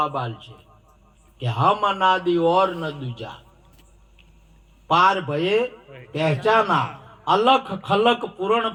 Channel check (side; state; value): both; identical; correlation 1.00